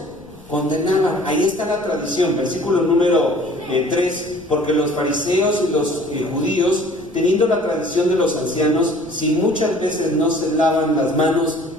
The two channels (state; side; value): noise; left; rumble, 24 dB below the sound